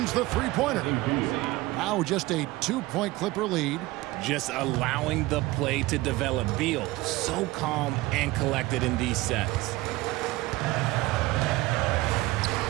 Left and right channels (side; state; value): left; quieter; 19.5 dB